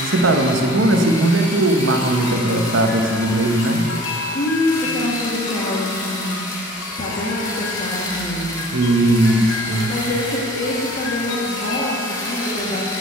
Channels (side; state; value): both; normal; correlation 0.48